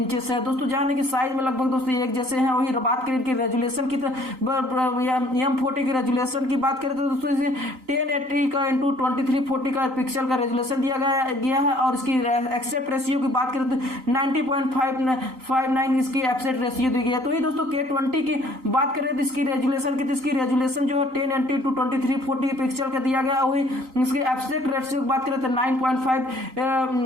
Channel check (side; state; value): left; late; 3.9 ms